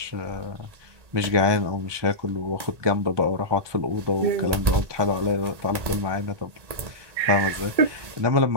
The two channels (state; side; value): late; left; 1.8 ms